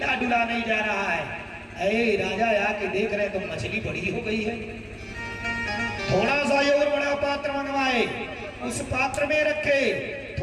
डुला नहीं जा रहा है। ऐ राजा आके देख रहे तो मछली बड़ी हो गई है। थोड़ा सा और बड़ा पात्र मंगवाए, उस पात्र में रखे।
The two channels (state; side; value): identical; both; correlation 1.00